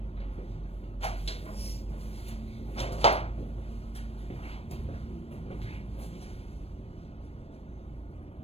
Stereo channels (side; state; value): right; late; 0.29 ms